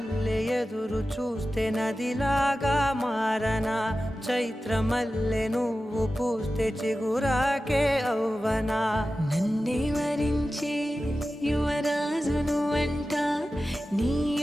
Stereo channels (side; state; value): both; normal; correlation 0.94